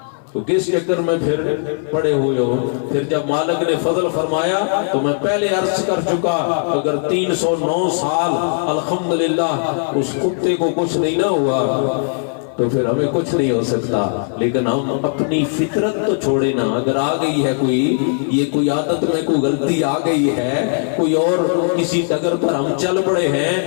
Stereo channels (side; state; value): right; silent; 61 dB below the other